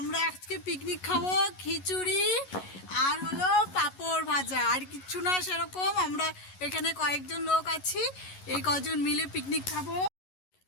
আজকে পিকনিক খাবো, খিচুড়ি আর হলো পাঁপড় ভাজা, আর কিচ্ছু না সেরকম। আমরা এখানে কয়েকজন লোক আছি, এই কজন মিলে পিকনিক খাবো।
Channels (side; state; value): right; late; 11 ms